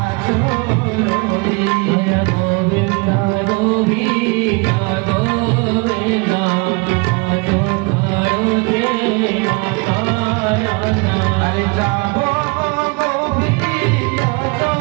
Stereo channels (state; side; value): quieter; left; 29.1 dB